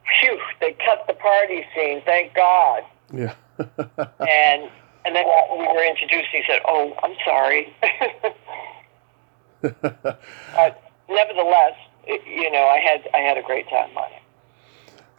"Phew, they cut the party scene, thank God." Yeah. and then we were introduced, he said, "Oh, I'm sorry." Nevertheless, I had a great time on it.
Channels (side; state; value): left; silent; 56 dB below the other